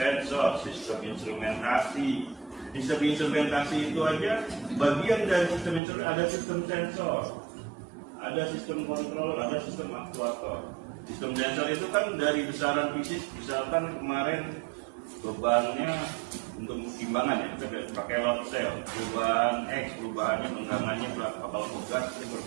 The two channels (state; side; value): drops out; left; at 5.8 s